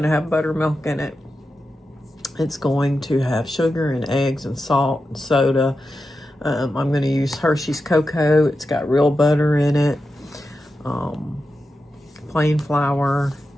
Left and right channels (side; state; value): both; normal; correlation 0.90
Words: to have buttermilk in it. It's going to have sugar and eggs and salt and soda. I'm going to use Hershey's cocoa. It's got real butter in it, plain flour,